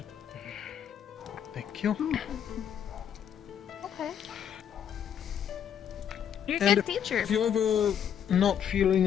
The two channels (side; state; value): right; quieter; 9.0 dB